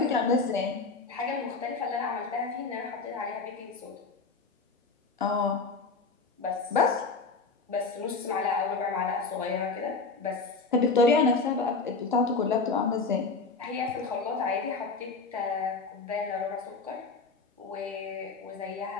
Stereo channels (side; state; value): right; quieter; 4.3 dB